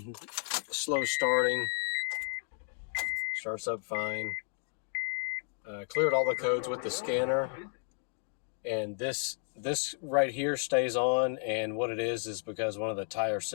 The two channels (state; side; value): silent; right; 56 dB below the other